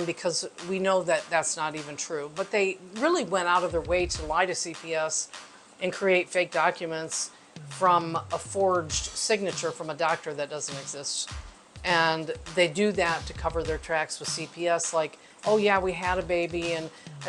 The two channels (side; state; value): both; identical; correlation 1.00